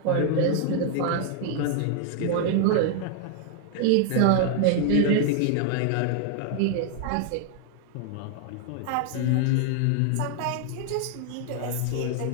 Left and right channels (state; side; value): different; both; correlation 0.00